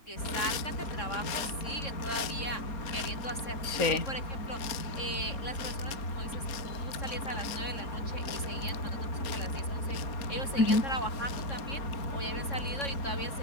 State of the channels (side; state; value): right; late; 3.6 ms